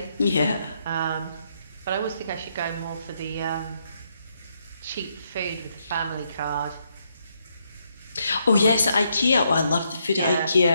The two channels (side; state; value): both; inverted; correlation -0.77